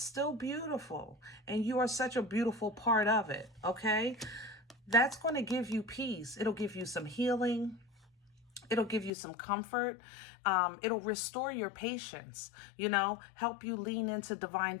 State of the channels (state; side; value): drops out; right; at 9.1 s